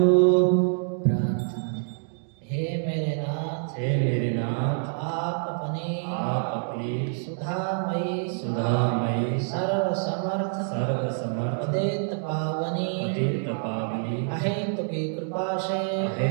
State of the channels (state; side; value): silent; left; digital silence